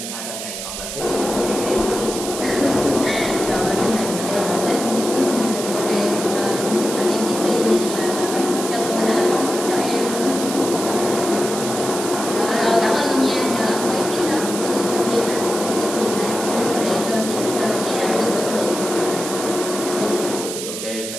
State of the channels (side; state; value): right; noise; hiss, 7 dB below the sound